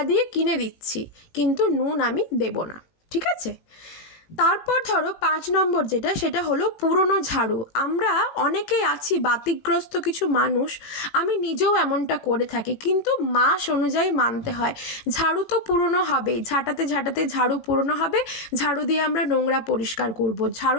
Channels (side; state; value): right; late; 18 ms